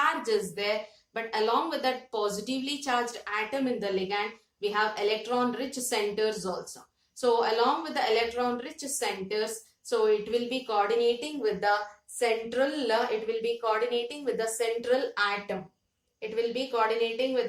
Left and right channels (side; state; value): both; identical; correlation 1.00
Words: is there, but along with that positively charged atom in the ligand, we have electron rich centers also. So along with the electron rich centers, so it will be coordinating with the central, atom. It will be coordinating with